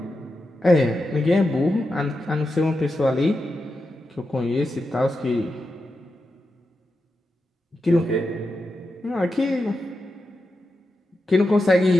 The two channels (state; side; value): normal; both; correlation 0.89